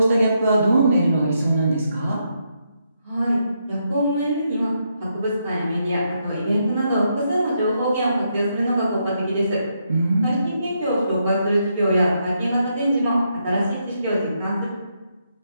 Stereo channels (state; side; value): inverted; both; correlation -0.79